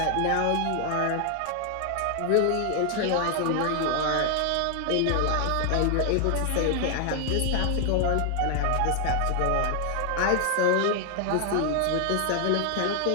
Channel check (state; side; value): different; both; correlation 0.00